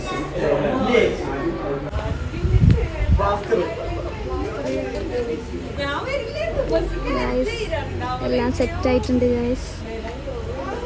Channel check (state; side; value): identical; both; correlation 1.00